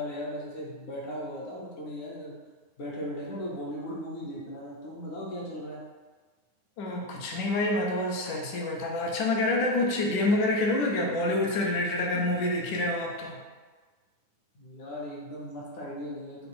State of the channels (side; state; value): right; late; 9.6 ms